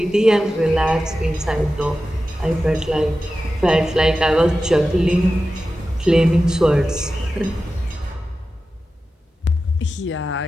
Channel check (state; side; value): normal; both; correlation 0.93